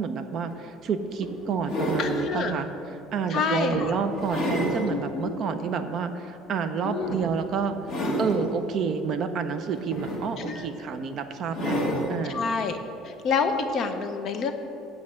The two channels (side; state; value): both; normal; correlation 0.50